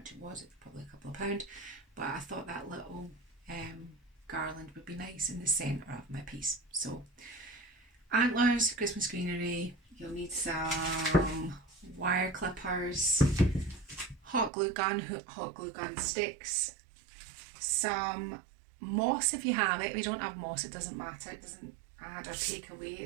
it was. It was probably a couple of pound, but I thought that little garland would be nice in the centre of my piece. So antlers, Christmas greenery, you'll need some wire clippers, hot glue gun sticks, some moss if you have it. If you don't have moss, it doesn't matter, it doesn't add or take away,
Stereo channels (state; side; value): drops out; left; at 14.5 s